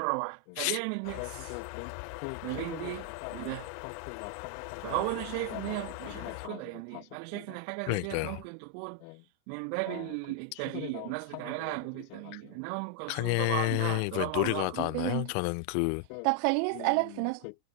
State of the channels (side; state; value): both; different; correlation 0.00